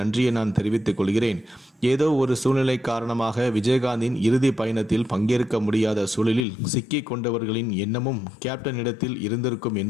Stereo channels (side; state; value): right; drops out; at 6.4 s